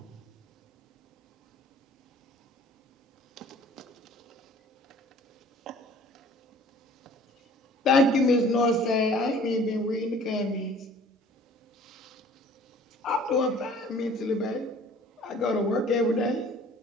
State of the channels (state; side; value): normal; both; correlation 0.51